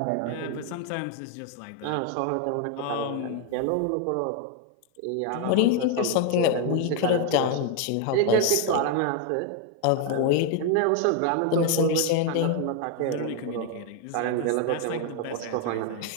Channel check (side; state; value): both; different; correlation 0.01